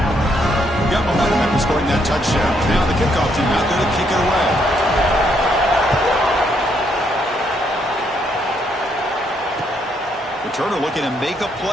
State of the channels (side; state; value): both; normal; correlation 0.73